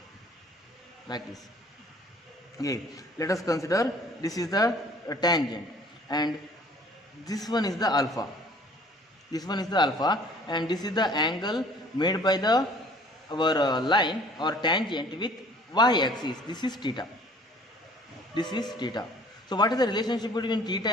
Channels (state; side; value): normal; both; correlation 0.53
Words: like this. Okay, let us consider this is the tangent and this one is the alpha. This one is the alpha and this is the angle made by the our line or tangent with y-axis. This is theta. This is theta. So what is the relationship between theta